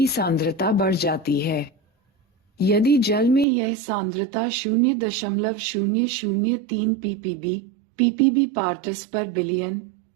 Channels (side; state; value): left; drops out; at 3.5 s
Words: सांद्रता बढ़ जाती है। यदि जल में यह सांद्रता 0.003 पीपीबी पार्ट्स पर बिलियन